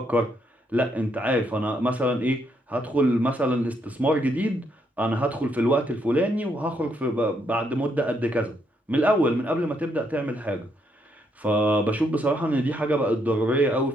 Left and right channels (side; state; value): both; normal; correlation 0.75